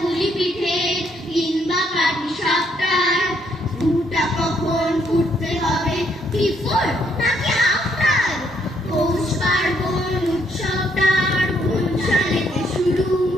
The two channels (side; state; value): both; normal; correlation 0.72